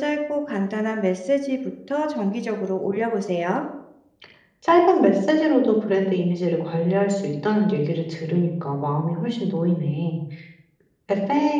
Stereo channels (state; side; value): identical; both; correlation 1.00